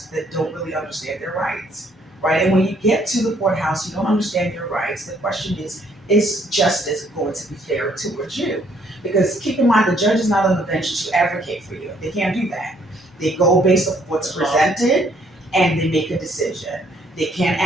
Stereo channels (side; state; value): both; normal; correlation 0.66